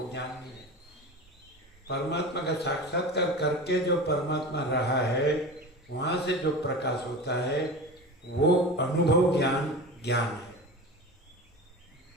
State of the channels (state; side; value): normal; both; correlation 0.30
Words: ज्ञान नहीं है। परमात्मा का साक्षात्कार करके जो परमात्मा रहा है, वहाँ से जो प्रकाश होता है वो अनुभव ज्ञान ज्ञान है।